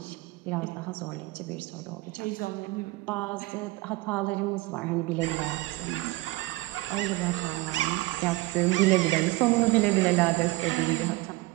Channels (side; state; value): left; quieter; 20.5 dB